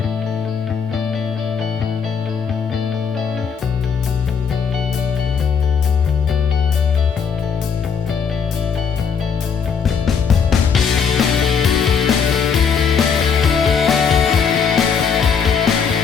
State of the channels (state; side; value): quieter; right; 6.5 dB